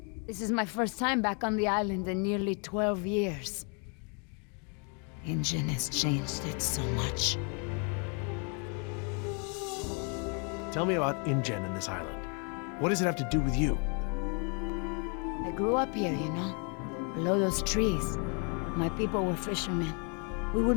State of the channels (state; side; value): quieter; right; 37.4 dB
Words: This is my first time back on the island in nearly 12 years. Injun has changed it so much. Tell me about InGen and this island. What does it have to do with you? I grew up here, you know, below those trees. My people were fishermen. We would